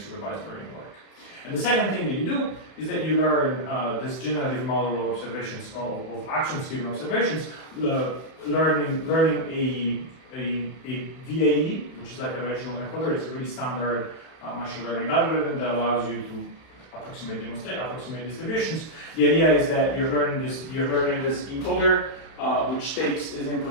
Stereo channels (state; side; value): late; right; 31 ms